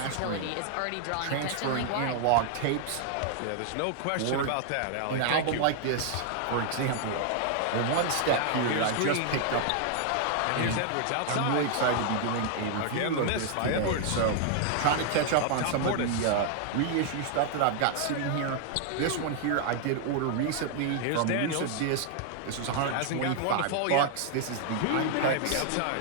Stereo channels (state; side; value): different; both; correlation 0.00